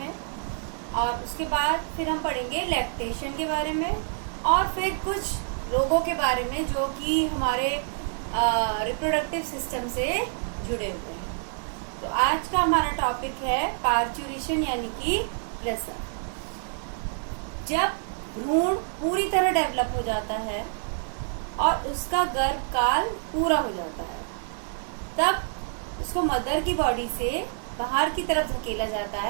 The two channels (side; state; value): left; silent; 60 dB below the other